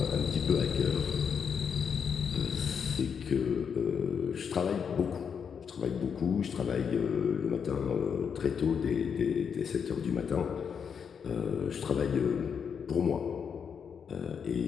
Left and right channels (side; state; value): right; quieter; 6.9 dB